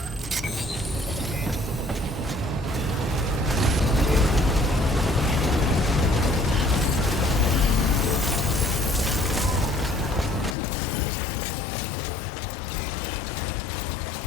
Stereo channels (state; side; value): drops out; right; at 10.6 s